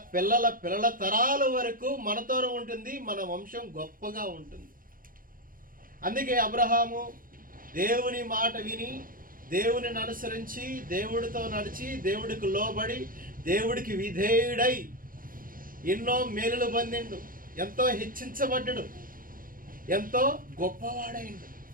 పిల్లల తరాల వరకు మనతో ఉంటుంది. మన వంశం గొప్పగా ఉంటుంది. అందుకే అబ్రహాము దేవుని మాట విని, దేవునిని అనుసరించి, దేవుడితో నడిచి, దేవుడికి లోబడి, దేవుడికి విధేయుడై ఎన్నో మేలులు పొందిండు, ఎంతో హెచ్చించబడ్డాడు, ఎంతో గొప్పవాడైండు.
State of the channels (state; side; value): late; left; 0.41 ms